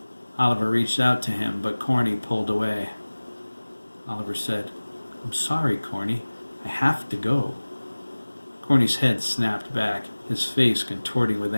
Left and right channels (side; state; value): both; inverted; correlation -1.00